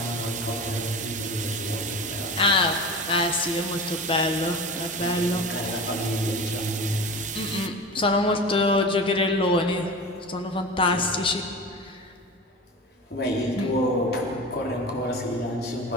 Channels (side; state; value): both; normal; correlation 0.32